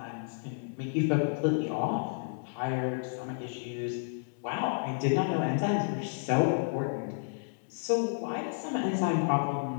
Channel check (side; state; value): right; silent; digital silence